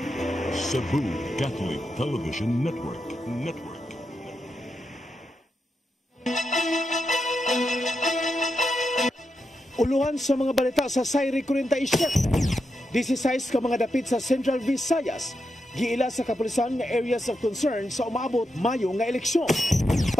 Cebu Catholic Television Network. Uluhan sa mga balita sa Sayri 47. 16 ka mga dapit sa Central Visayas. Giila sa kapulisan nga areas of concern sa umaabot Mayo nga eleksyon.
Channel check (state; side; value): normal; both; correlation 0.86